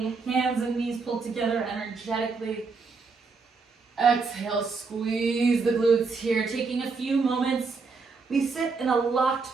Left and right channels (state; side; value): quieter; left; 4.5 dB